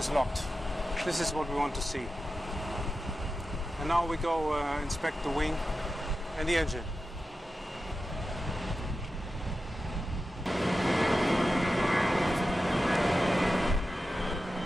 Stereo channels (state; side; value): normal; both; correlation 0.92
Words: locked. This is what we want to see. And now we go inspect the wing and the engine.